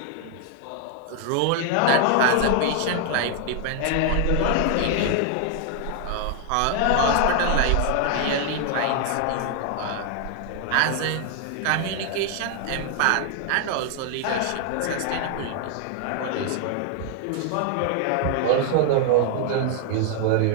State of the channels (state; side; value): different; both; correlation 0.00